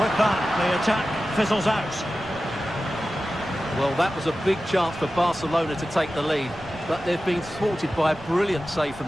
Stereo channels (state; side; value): noise; right; rumble, 23 dB below the sound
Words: with that, the attack fizzles out. Well, that was a big chance for Barcelona to take the lead, but they've been thwarted by a brilliant save